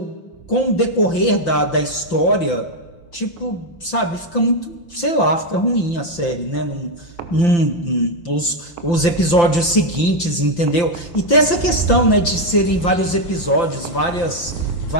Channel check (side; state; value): right; late; 5.8 ms